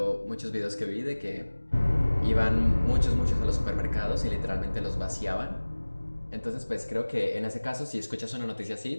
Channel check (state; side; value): inverted; both; correlation -1.00